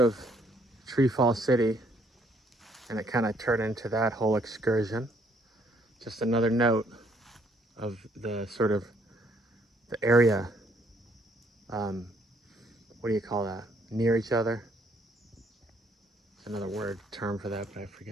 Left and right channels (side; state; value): both; normal; correlation 0.67